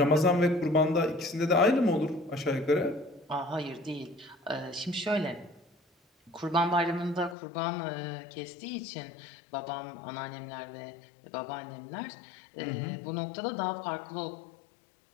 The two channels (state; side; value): drops out; right; at 7.4 s